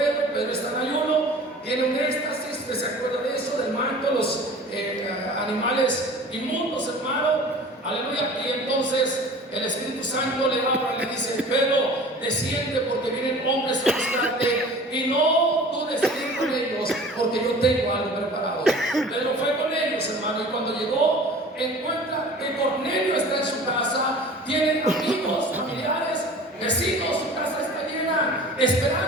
Pedro está en ayuno, tiene un éxtasis, que se acuerda de eso, del manto, los animales inmundos, hermano. Aleluya. Y entonces el Espíritu Santo le habla y le dice: Pedro, desciende, porque vienen hombres a buscarte, y no dudes ir con ellos, porque yo tengo algo preparado. Pedro fue con ellos, hermano, y cuando llegó, encuentra que Cornelio está en su casa, tiene amigos, familiares, vecinos, su casa está llena,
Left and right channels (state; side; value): normal; both; correlation 0.43